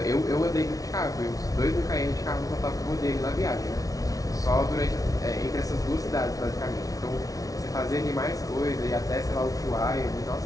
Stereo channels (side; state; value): right; late; 0.18 ms